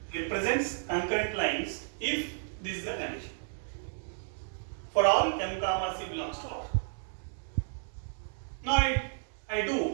represents concurrent lines if this is the condition. For all m comma c belongs to R. Now I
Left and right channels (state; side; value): silent; left; 56 dB below the other